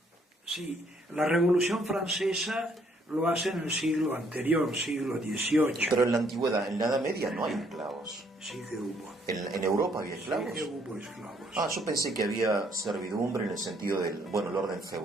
Sí, la Revolución Francesa lo hace en el siglo anterior, siglo XVIII. pero en la antigüedad, en la Edad Media no hay esclavos. Sí que hubo. ¿En Europa había esclavos? Sí que hubo esclavos. Ah, yo pensé que había servidumbre en el sentido del, bueno, el orden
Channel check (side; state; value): both; normal; correlation 0.67